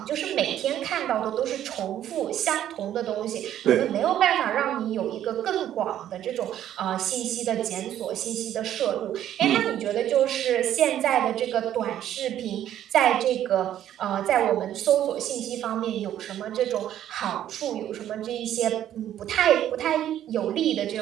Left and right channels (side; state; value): left; quieter; 11.4 dB